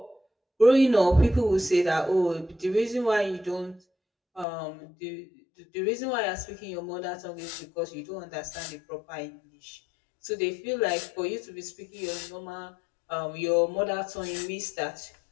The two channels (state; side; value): drops out; right; at 4.5 s